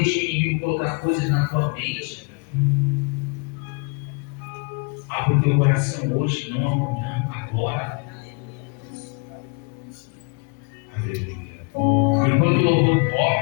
o inimigo colocar coisas na tua mente. Abra o teu coração hoje, não amanhã, agora. Aleluia. Enquanto o louvor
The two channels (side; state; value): right; quieter; 31.6 dB